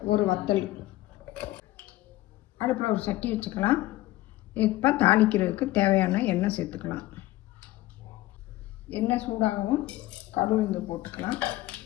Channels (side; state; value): right; quieter; 16.8 dB